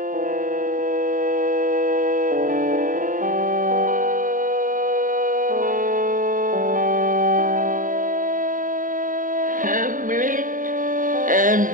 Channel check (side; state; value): left; late; 0.39 ms